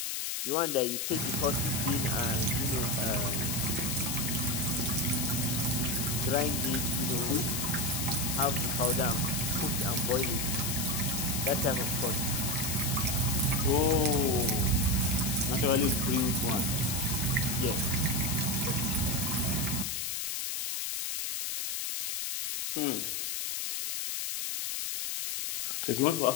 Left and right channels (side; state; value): left; noise; hiss, 1 dB below the sound